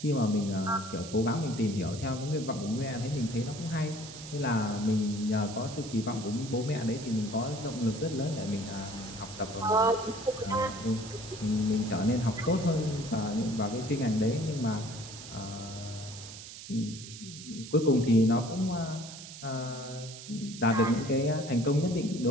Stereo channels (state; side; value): noise; right; hiss, 13 dB below the sound